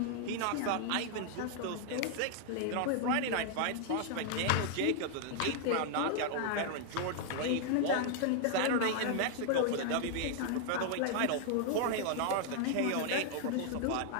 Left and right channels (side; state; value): both; different; correlation 0.00